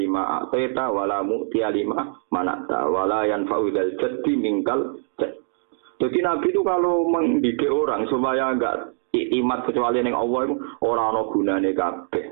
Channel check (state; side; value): silent; left; digital silence